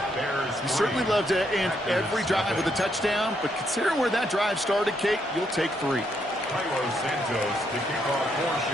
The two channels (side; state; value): both; normal; correlation 0.76